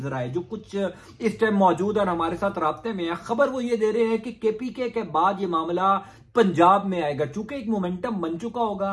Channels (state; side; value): identical; both; correlation 1.00